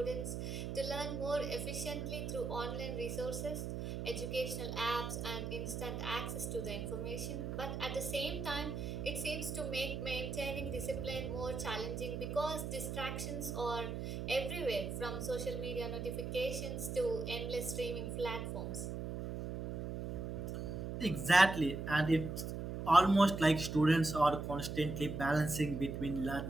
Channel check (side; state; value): right; noise; hum, 4 dB below the sound